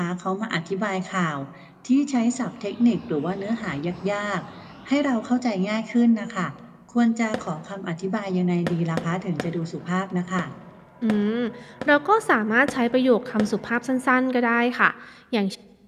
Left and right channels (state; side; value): identical; both; correlation 1.00